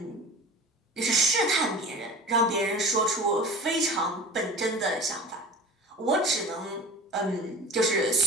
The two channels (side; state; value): both; normal; correlation 0.37